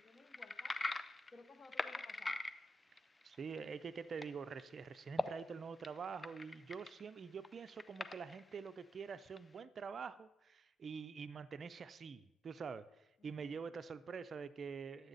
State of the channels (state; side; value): normal; both; correlation 0.86